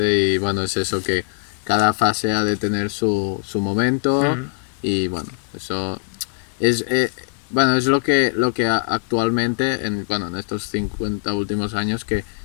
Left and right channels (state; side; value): silent; right; digital silence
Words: y bueno, es eso que cada fase ha de tener su momento y bueno, eso es... bueno, es lo que actualmente, en estos 50 últimos años, que